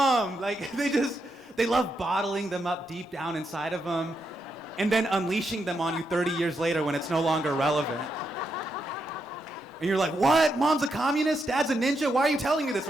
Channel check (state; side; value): normal; both; correlation 0.82